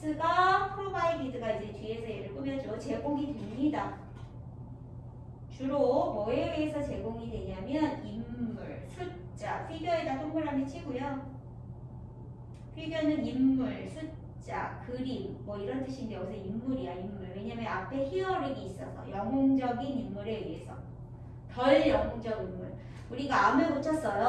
프로바이디드가 이제 뒤에서 얘를 꾸며줘. 제공이 됩니다. 주로 뭐에 의해서 제공이 되냐면 인물, 숫자, 피규어에다 동그라미 치고요. 피규어는 인물, 숫자, 그림 뭐 이런 뜻인데 여기서 인물이야, 인물. 왜냐면 앞에 히어링이 있어서 영웅적인 인물에 의해서. 덜 영웅적 인물. 우리가 암을 고쳤어요.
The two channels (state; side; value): identical; both; correlation 1.00